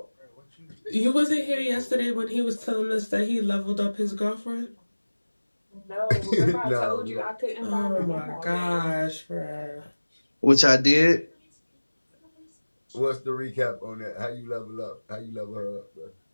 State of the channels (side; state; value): both; inverted; correlation -1.00